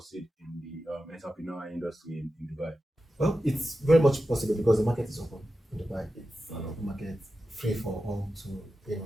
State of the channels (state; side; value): normal; both; correlation 0.92